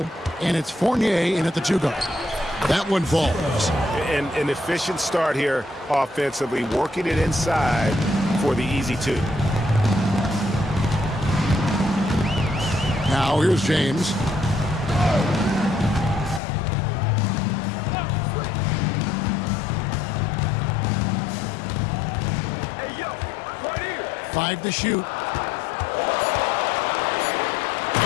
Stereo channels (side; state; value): right; drops out; at 16.4 s